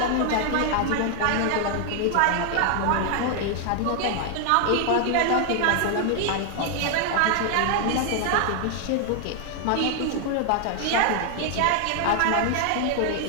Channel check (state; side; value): different; both; correlation 0.00